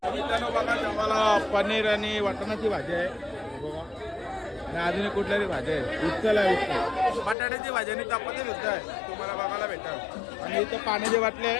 मित्रांनो बघा जेवायला पनीर आणि वाटाण्याची भाजी आहे बघा, आणि अजून कुठल्याही भाजी आहे. उचल आहे, उचल बटाट्याची भाजी आणि चपाती सुद्धा आहे तुम्हाला बघायला भेटेल. आणि इथं पाण्याचे वाटले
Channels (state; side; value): drops out; right; at 7.4 s